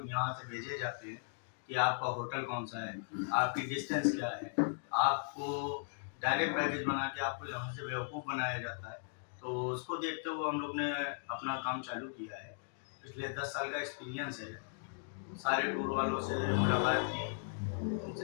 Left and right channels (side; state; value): right; silent; digital silence